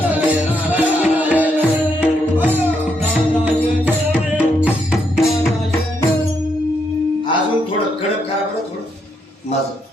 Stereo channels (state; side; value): normal; both; correlation 0.77